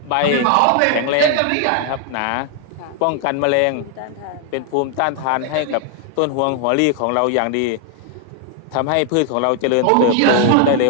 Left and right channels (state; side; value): different; both; correlation 0.00